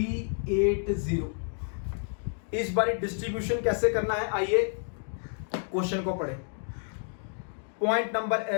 इस बार डिस्ट्रीब्यूशन कैसे करना है, आइए क्वेश्चन को पढ़ें। Point number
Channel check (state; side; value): silent; right; 58 dB below the other